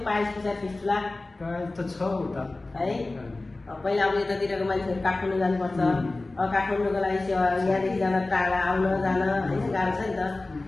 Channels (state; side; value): quieter; right; 3.1 dB